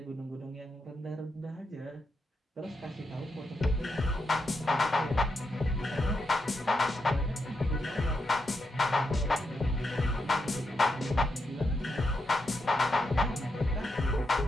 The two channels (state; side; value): normal; both; correlation 0.84